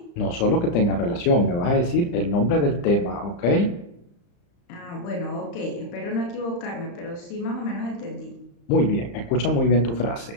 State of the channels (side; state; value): right; late; 35 ms